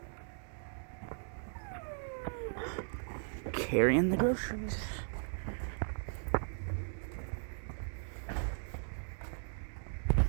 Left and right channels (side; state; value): left; silent; digital silence